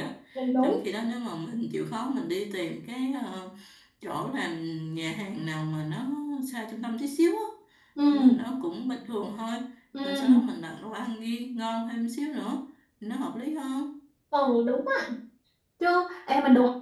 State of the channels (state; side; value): identical; both; correlation 1.00